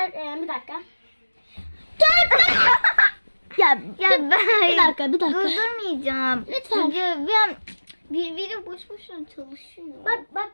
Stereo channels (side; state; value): both; inverted; correlation -1.00